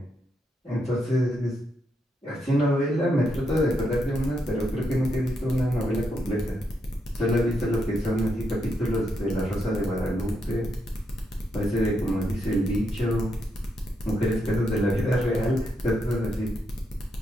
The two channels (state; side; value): normal; both; correlation 0.80